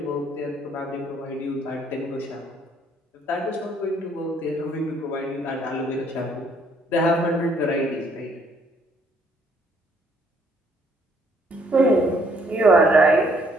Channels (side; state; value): both; normal; correlation 0.66